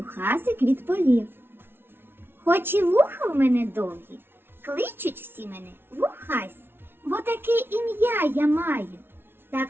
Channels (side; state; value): left; late; 0.11 ms